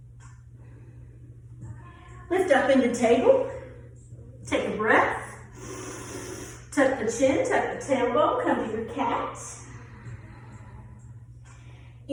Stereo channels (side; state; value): both; identical; correlation 1.00